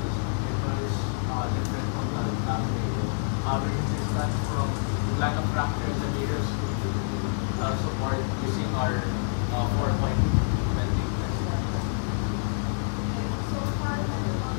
ito is different from the last table. Average distance from wala ng fracture and the nearest support using our 4-point bending test. So for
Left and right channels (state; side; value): silent; right; digital silence